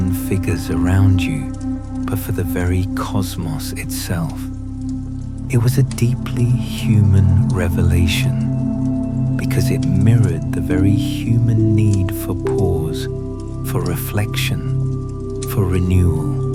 figures around you, but for the very cosmos itself. It was a deeply human revelation because it mirrored the very human need for pause, for reflection, for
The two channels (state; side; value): identical; both; correlation 1.00